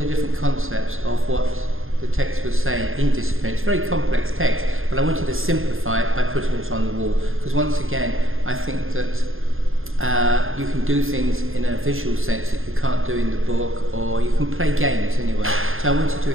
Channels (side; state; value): left; late; 0.60 ms